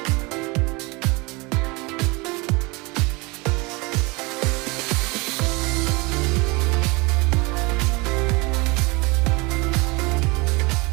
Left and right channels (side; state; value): left; quieter; 26.0 dB